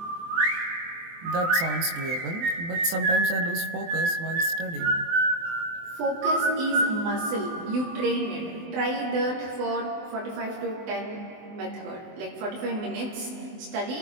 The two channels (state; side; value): late; left; 24 ms